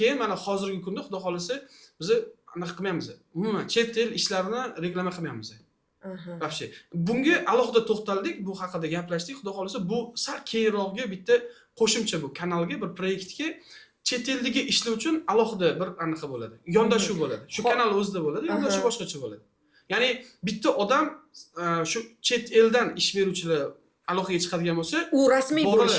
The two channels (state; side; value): identical; both; correlation 1.00